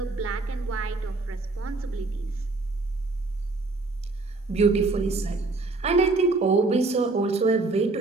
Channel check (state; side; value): quieter; left; 3.4 dB